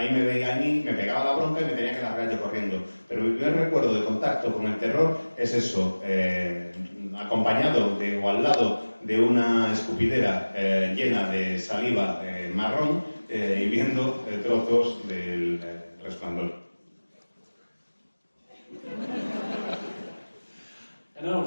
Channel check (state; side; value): inverted; both; correlation -1.00